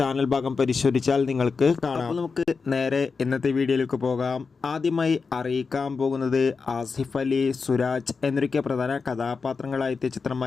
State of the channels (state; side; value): quieter; right; 4.9 dB